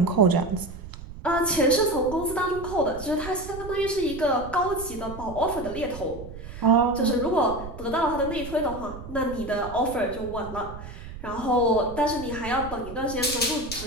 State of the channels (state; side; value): noise; right; rumble, 12 dB below the sound